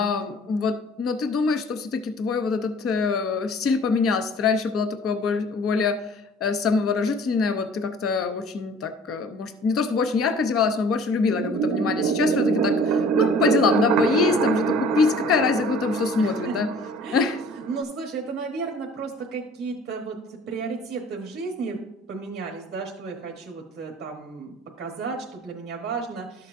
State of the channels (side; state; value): both; normal; correlation 0.50